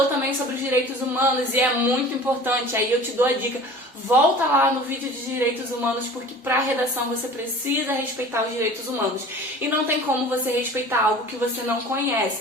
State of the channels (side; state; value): both; normal; correlation 0.42